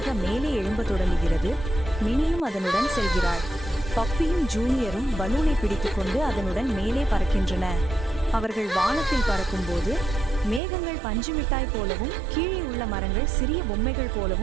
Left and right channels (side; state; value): left; drops out; at 10.6 s